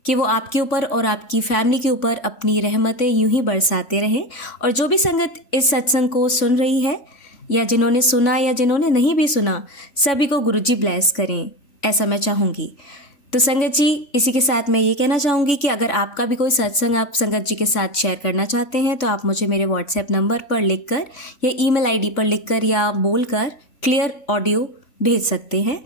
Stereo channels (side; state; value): right; late; 3.6 ms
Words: कि वो आपके ऊपर और आपकी फैमिली के ऊपर अपनी रहमतें यूं ही बरसाते रहें। और जो भी संगत इस सत्संग को सुन रही है या जिन्होंने सुना या जिन्होंने नहीं भी सुना, सभी को गुरुजी ब्लेस करें, ऐसा मैं चाहूँगी। तो संगत जी इसी के साथ मैं ये कहना चाहूँगी कि अगर आपका भी कोई सत्संग आप संगत जी के साथ शेयर करना चाहते हैं तो आप मुझे मेरे व्हाट्सएप नंबर पर लिखकर या ईमेल आईडी पर लिखकर या बोलकर क्लियर ऑडियो भेज सकते हैं